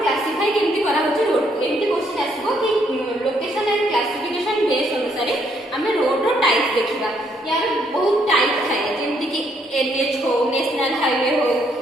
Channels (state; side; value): normal; both; correlation 0.71